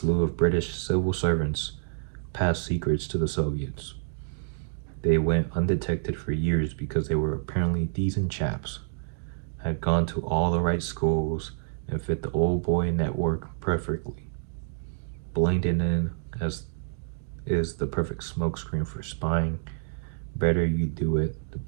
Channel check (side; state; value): left; silent; digital silence